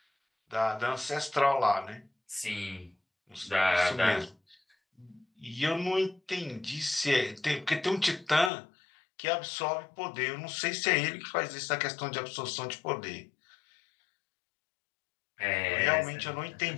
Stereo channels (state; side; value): drops out; right; at 8.5 s